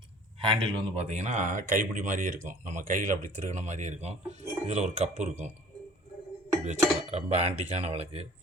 ஹேண்டில் வந்து பார்த்திங்கன்னா கைப்பிடி மாதிரியே இருக்கும், நம்ம கையில் அப்படி திருகின மாதிரியே இருக்கும். இதில் ஒரு கப்பு இருக்கும், இப்படி வச்சுக்கலாம். ரொம்ப ஆன்டிக்கான விளக்கு.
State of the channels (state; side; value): normal; both; correlation 0.50